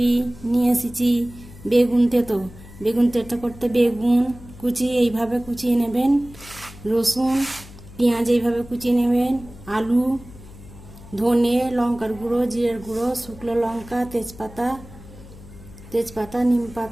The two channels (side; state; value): left; noise; hum, 18 dB below the sound